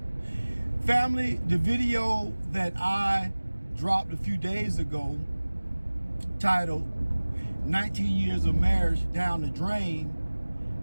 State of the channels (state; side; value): inverted; both; correlation -1.00